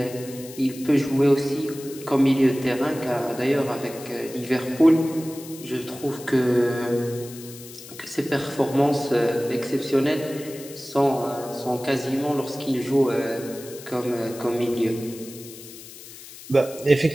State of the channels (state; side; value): noise; left; hiss, 16 dB below the sound